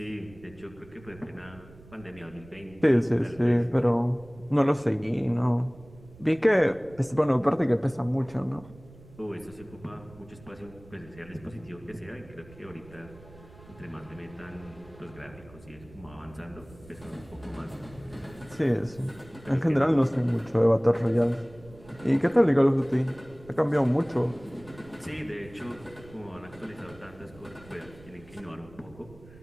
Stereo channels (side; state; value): right; noise; rumble, 21 dB below the sound